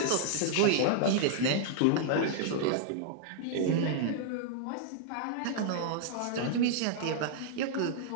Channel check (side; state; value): both; different; correlation -0.01